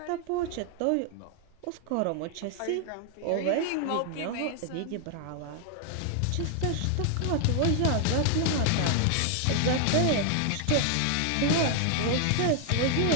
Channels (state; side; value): different; both; correlation 0.00